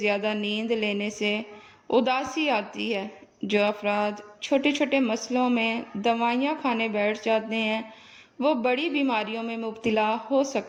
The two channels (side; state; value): both; identical; correlation 1.00